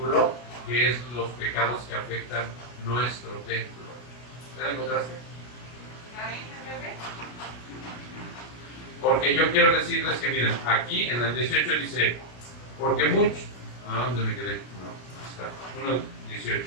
que es los pecados que afectan nuestro templo. ¿Ya la encontraste? Porque yo quiero decirles que, miren, aquí en el 18 dice, porque muchos, ¿a dónde me quedé? No, está, 1:18.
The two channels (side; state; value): right; late; 33 ms